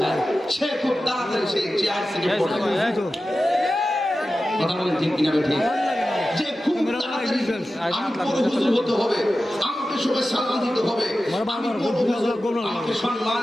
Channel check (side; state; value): both; normal; correlation 0.94